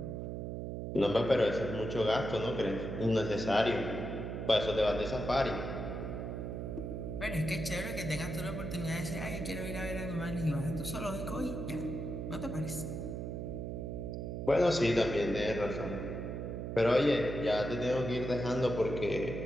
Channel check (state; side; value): noise; right; hum, 4 dB below the sound